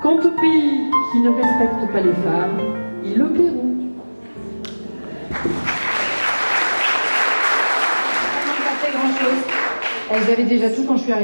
Quant aux pays qui ne respectent pas les femmes, ils le paieront. Elles avaient déjà tout quand je suis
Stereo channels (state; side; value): inverted; both; correlation -1.00